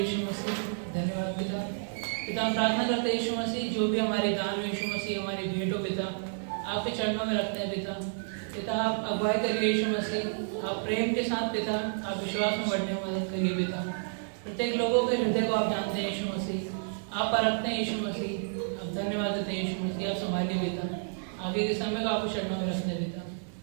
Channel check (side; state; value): left; silent; digital silence